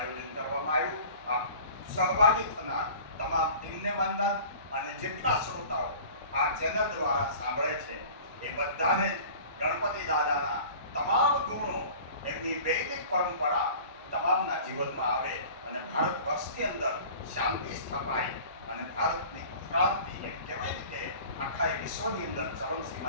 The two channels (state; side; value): inverted; both; correlation -0.43